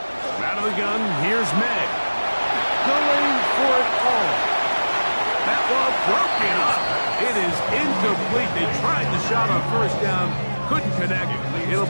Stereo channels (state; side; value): inverted; both; correlation -1.00